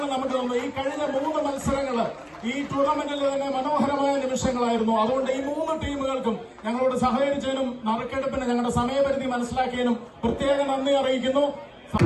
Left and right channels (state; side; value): identical; both; correlation 1.00